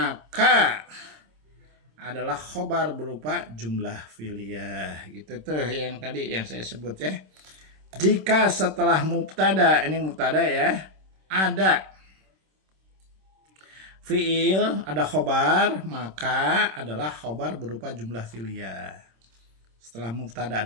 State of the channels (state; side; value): late; left; 26 ms